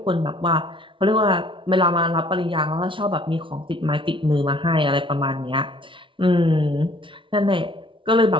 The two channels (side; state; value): left; late; 0.25 ms